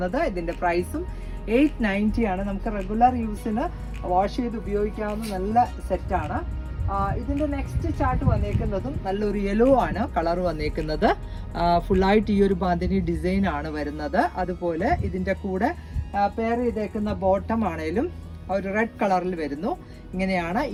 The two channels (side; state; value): both; identical; correlation 1.00